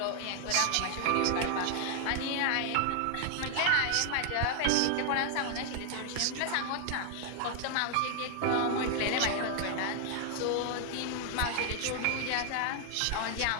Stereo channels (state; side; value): different; both; correlation 0.00